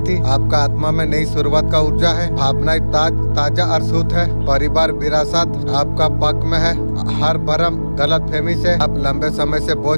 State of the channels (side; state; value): both; inverted; correlation -1.00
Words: आपका आत्मा में नई शुरुआत का ऊर्जा है। भावनाएं ताजा और शुद्ध है। परिवार विरासत आपका पक्ष में है। हर भरम गलत फहमी से आप लंबे समय से